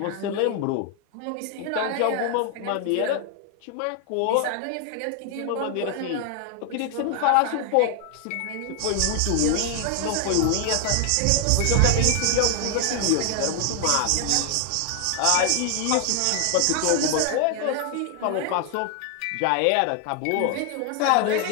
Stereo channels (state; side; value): different; both; correlation 0.00